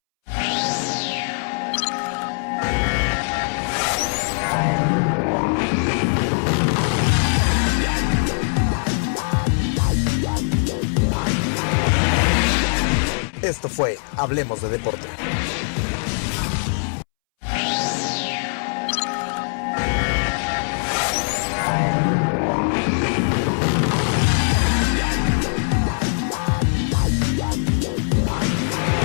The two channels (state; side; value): silent; right; 65 dB below the other